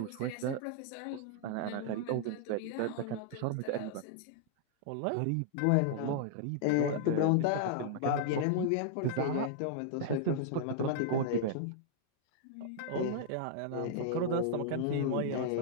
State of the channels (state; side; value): different; both; correlation -0.01